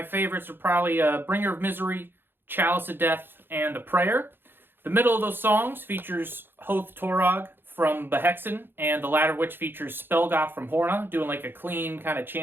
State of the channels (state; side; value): late; left; 0.10 ms